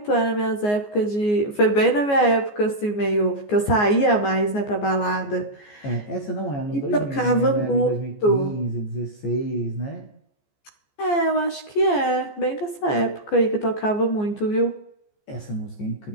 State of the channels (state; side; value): late; right; 14 ms